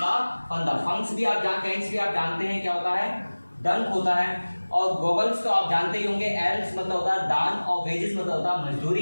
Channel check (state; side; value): inverted; both; correlation -1.00